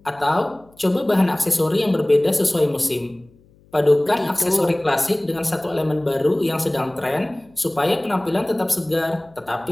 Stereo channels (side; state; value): left; noise; hum, 30 dB below the sound